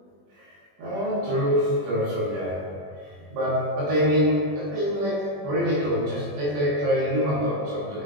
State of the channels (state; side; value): late; left; 21 ms